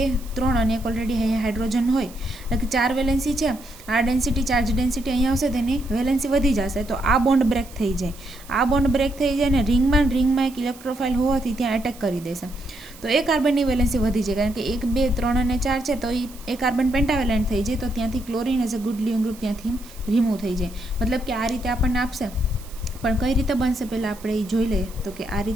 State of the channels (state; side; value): noise; right; hiss, 21 dB below the sound